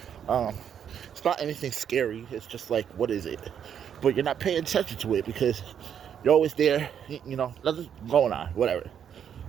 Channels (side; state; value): left; quieter; 8.6 dB